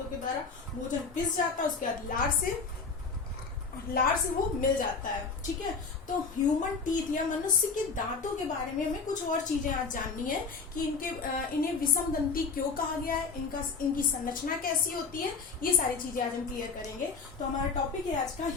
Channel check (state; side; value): quieter; right; 4.8 dB